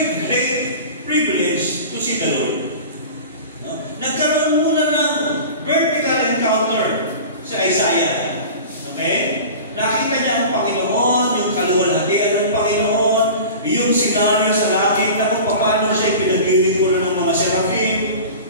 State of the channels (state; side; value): inverted; both; correlation -0.36